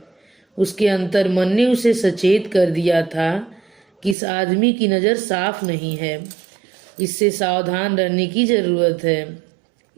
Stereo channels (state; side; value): drops out; left; at 4.2 s